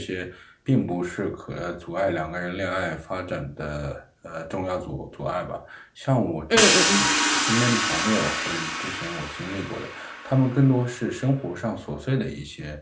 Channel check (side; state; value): both; identical; correlation 1.00